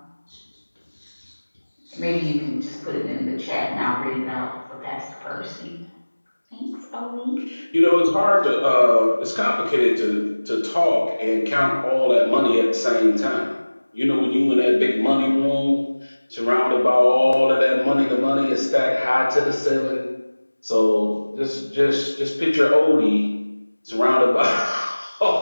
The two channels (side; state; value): both; inverted; correlation -1.00